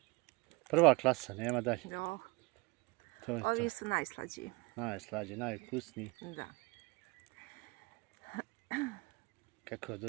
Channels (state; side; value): quieter; left; 26.2 dB